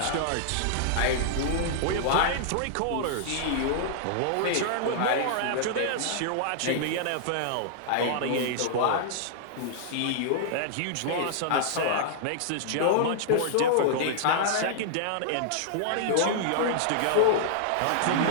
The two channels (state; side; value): different; both; correlation -0.02